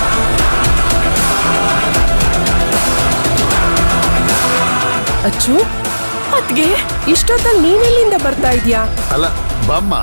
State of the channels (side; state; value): both; inverted; correlation -1.00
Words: ಅಚ್ಚು, ಅದ್ಗೆ ಇಷ್ಟೊತ್ತಲ್ಲಿ ನೀನೆಲ್ಲಿಂದ ಬರ್ತಾ ಇದೀಯಾ? ಅಲ್ಲ ಬಮ್ಮ.